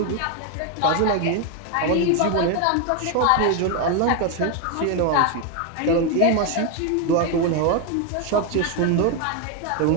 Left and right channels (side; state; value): both; different; correlation 0.01